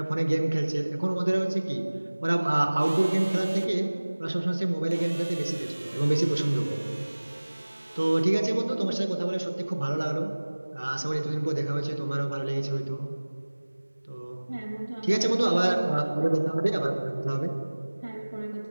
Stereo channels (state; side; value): inverted; both; correlation -1.00